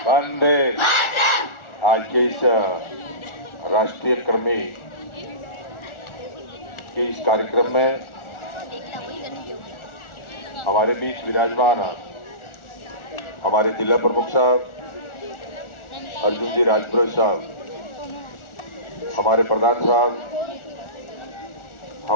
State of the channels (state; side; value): late; right; 1.4 ms